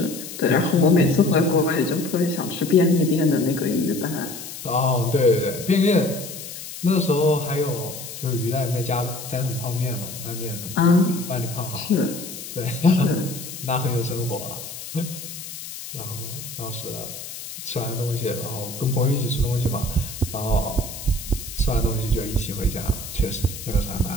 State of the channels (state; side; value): noise; left; hiss, 11 dB below the sound